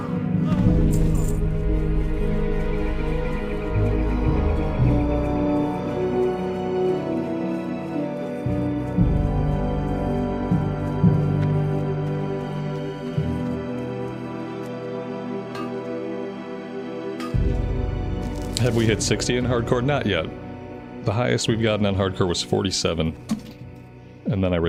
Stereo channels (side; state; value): both; identical; correlation 1.00